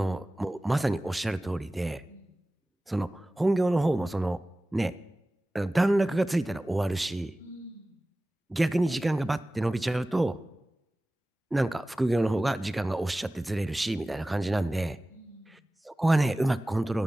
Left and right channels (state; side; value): normal; both; correlation 0.97